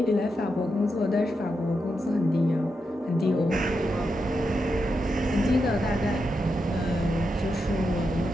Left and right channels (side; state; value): both; normal; correlation 0.86